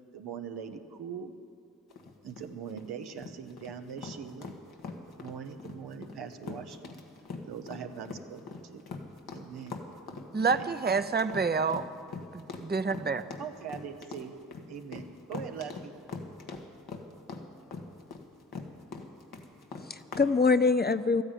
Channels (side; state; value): both; normal; correlation 0.35